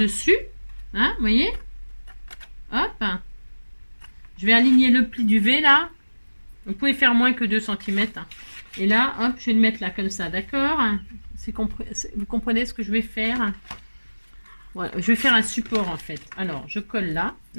Hein, vous voyez? Hop. Je vais aligner le pli du V, là. Vous pouvez faire moins que 2 cm. Hein. Et là, hop, je vais le mettre là, comme ça, d'accord? Vous comprenez ce que je vais faire? Voilà, je vais faire un support en fait. Alors, je colle là.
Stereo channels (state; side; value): inverted; both; correlation -1.00